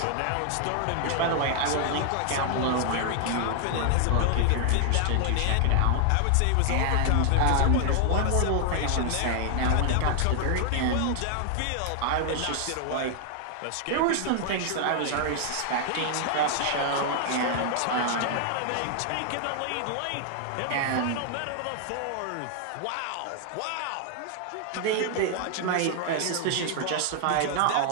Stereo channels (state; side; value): different; both; correlation 0.00